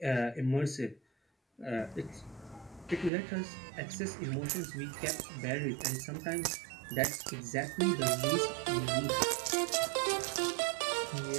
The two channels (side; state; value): left; drops out; at 3.1 s